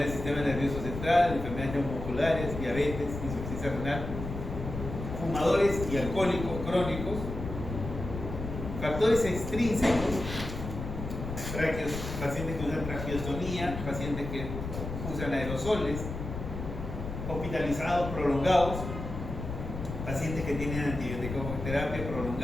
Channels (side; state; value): left; noise; rumble, 7 dB below the sound